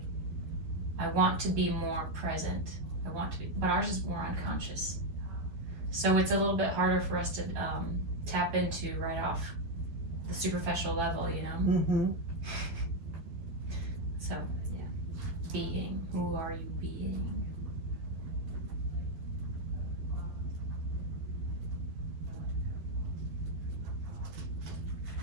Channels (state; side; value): late; left; 12 ms